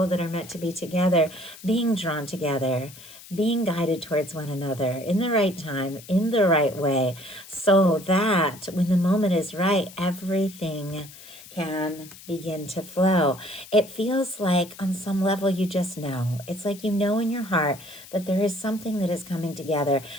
that are meant to be together, being drawn together, being guided towards one another in the right time, in the right way, so that when the moment is right, everything can begin to flow. It feels like on some level you just know. It's like you know in your heart that there is something that is coming together.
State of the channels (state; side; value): noise; left; hiss, 18 dB below the sound